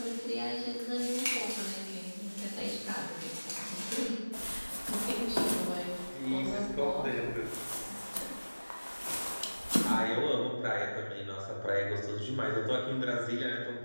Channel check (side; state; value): both; inverted; correlation -1.00